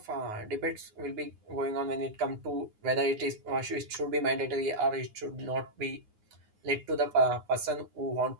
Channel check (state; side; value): late; left; 9.5 ms